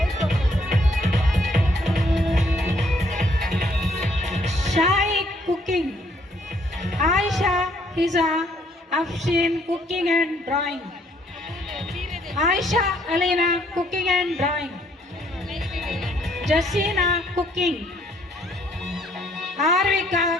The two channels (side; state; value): both; normal; correlation 0.66